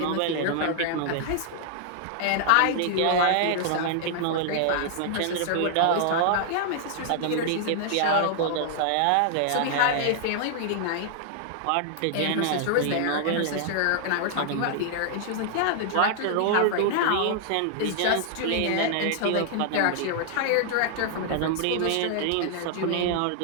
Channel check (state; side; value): different; both; correlation -0.01